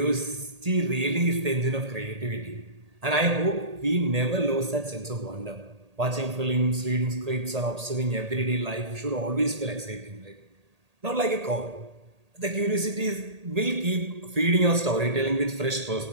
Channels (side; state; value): left; late; 1.8 ms